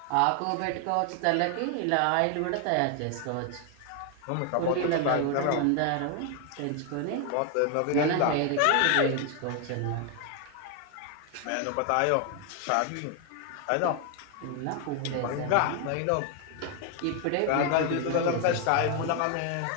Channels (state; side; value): different; both; correlation 0.01